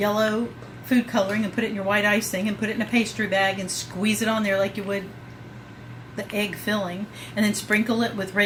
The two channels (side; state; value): both; identical; correlation 1.00